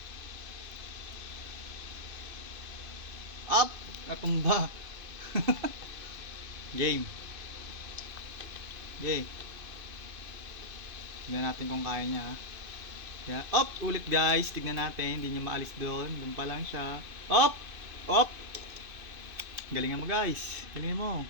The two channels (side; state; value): left; late; 2.5 ms